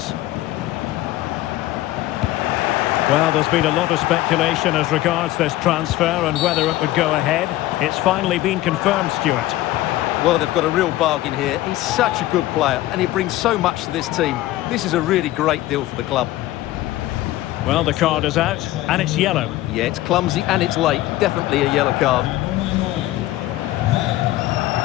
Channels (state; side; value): quieter; right; 16.0 dB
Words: Well, there's been a lot of speculation as regards this transfer and whether it would go ahead. It's finally been confirmed, Stuart. Well, they've got a real bargain here. He's such a good player and he brings so much to this team. This is a really great deal for the club. Well, the card is out and it's yellow. Yeah, it's clumsy and it's late. Definitely a yellow card.